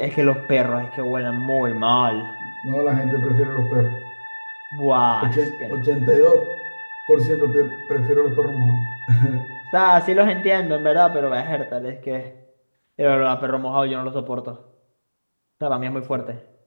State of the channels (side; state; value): both; inverted; correlation -1.00